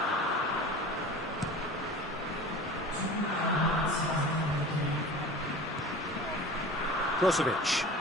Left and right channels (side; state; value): both; normal; correlation 0.38